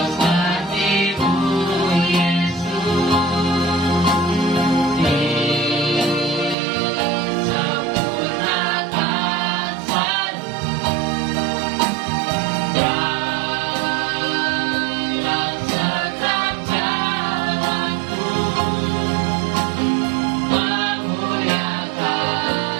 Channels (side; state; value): left; drops out; at 6.6 s